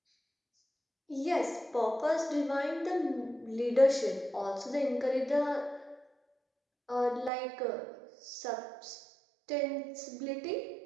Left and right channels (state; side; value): drops out; left; at 7.3 s